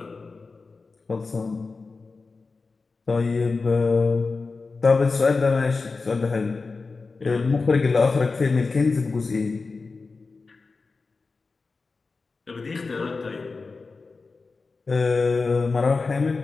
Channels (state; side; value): quieter; right; 4.1 dB